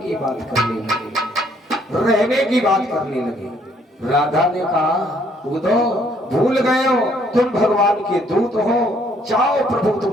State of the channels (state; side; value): normal; both; correlation 0.66